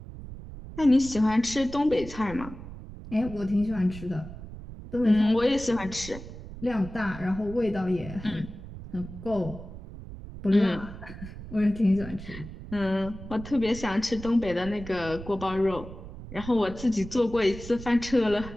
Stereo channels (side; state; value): right; noise; rumble, 13 dB below the sound